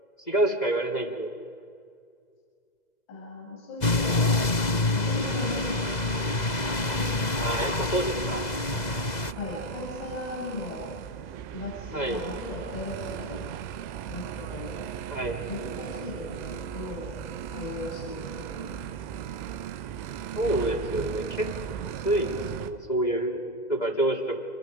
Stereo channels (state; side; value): late; right; 2.0 ms